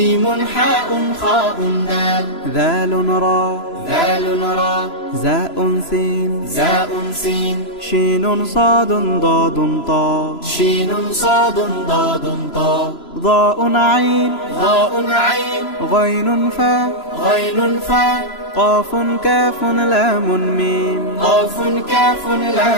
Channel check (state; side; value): late; right; 3.0 ms